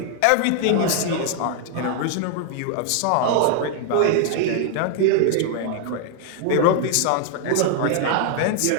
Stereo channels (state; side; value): different; both; correlation 0.00